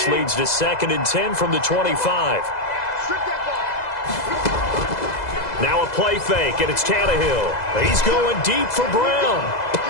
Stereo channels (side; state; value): right; late; 2.0 ms